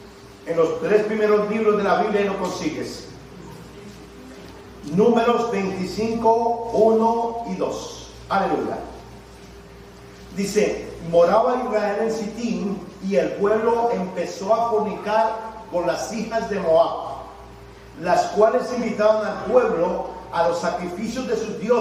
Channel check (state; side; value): identical; both; correlation 1.00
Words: En los 3 primeros libros de la Biblia lo consigues. Números 25, 1 y 2. Aleluya. Dice: moraba Israel en Sitín, y el pueblo empezó a fornicar con las hijas de Moab, las cuales invitaban al pueblo a los sacrificios de sus